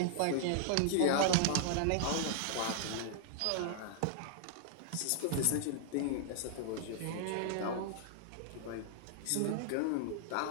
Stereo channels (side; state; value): both; different; correlation -0.01